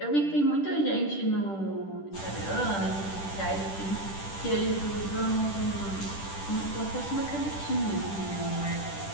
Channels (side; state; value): right; late; 10 ms